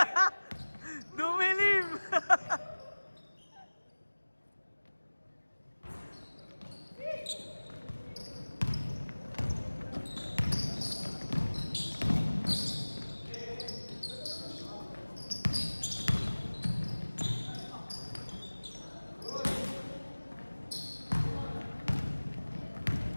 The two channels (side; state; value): both; inverted; correlation -1.00